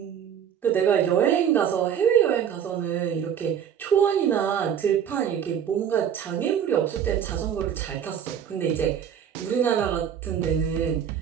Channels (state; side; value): quieter; left; 8.7 dB